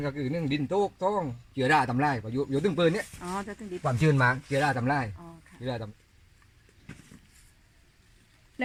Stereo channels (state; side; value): identical; both; correlation 1.00